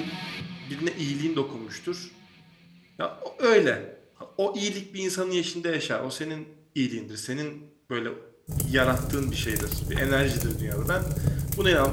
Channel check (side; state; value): both; identical; correlation 1.00